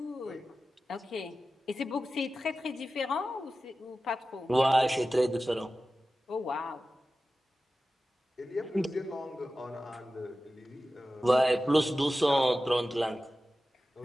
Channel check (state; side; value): normal; both; correlation 0.94